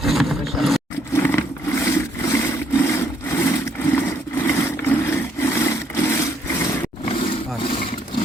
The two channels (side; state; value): both; normal; correlation 0.69